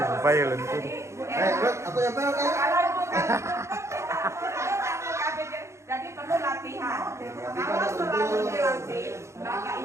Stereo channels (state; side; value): late; left; 0.14 ms